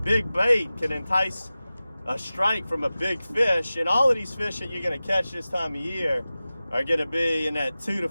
big bait can entice a strike from a big fish. And all of these fish that you're going to catch this time of year are going to be in that 2 to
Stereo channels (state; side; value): inverted; both; correlation -0.96